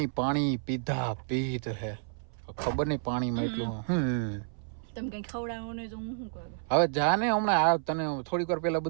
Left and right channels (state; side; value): silent; left; 58 dB below the other